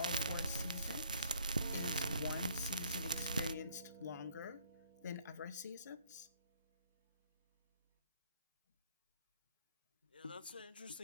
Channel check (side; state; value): both; inverted; correlation -0.62